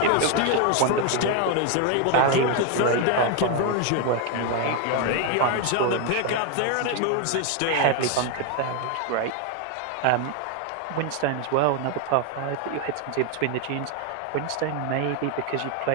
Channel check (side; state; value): both; different; correlation 0.01